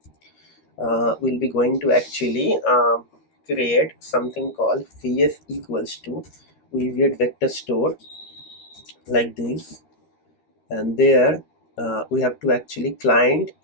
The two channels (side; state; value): right; late; 13 ms